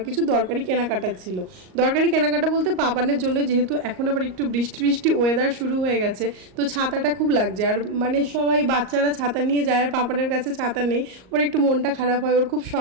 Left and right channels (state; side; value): late; left; 38 ms